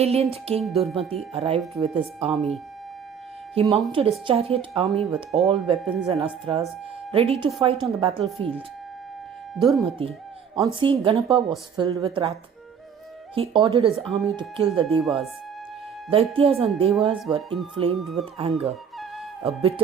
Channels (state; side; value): quieter; left; 7.2 dB